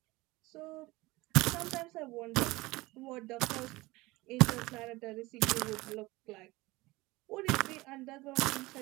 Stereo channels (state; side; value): quieter; left; 21.0 dB